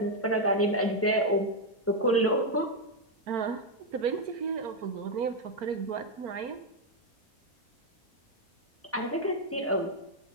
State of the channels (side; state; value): both; normal; correlation 0.02